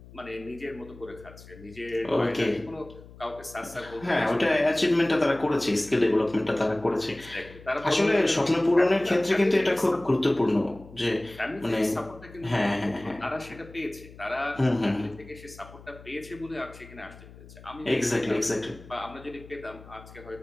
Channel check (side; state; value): left; noise; hum, 19 dB below the sound